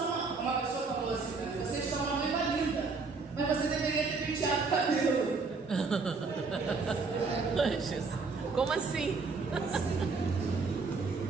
uma pessoa falou assim para mim, você está uma noiva linda, mas você deveria ter penteado o cabelo. Como assim?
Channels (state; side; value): quieter; left; 4.4 dB